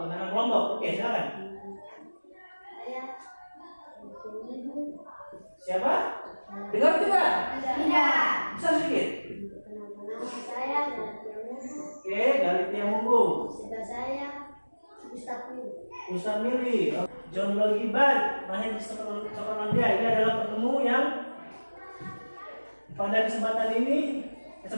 kelompok. Oke, silakan. Siapa? Dengar tidak? Tidak. Bisa sedikit. Saya Oke, Galitia Munggu. saya Ustaz Mili. John Logibar. Mahir Sokolandia. Ini adalah penemu yang pada kesempatan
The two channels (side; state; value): both; inverted; correlation -1.00